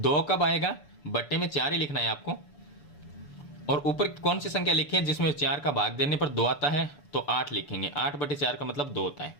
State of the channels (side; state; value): right; late; 6.9 ms